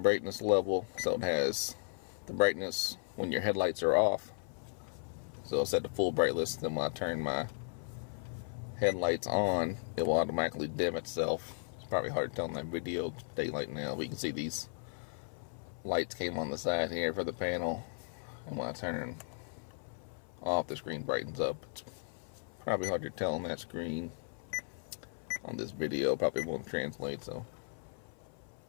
level, so it has the brightness when your headlights are off. So I'll set the full brightness, then when I turn my headlights on, it will automatically dim itself. It's probably hard to tell in that video, daylight now, but you can see these lights came on the side here for the panel, and when I turn off, the screen brightens up. It's probably hard to tell on that screen. On this video, probably won't translate, so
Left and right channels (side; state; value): right; silent; 54 dB below the other